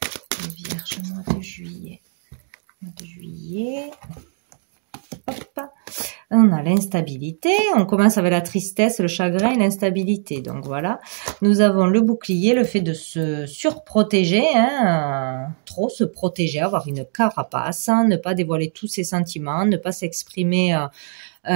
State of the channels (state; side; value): silent; left; 61 dB below the other